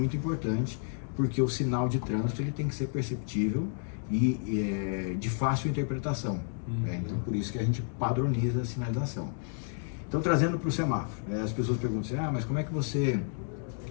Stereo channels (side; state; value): right; silent; 57 dB below the other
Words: importante, porque o sinal de trânsito ele tem que ser perceptível e de fácil interpretação. Então por isso que a gente padroniza a sinalização. Então trazendo para o semáforo, as pessoas perguntam assim, mas como é que você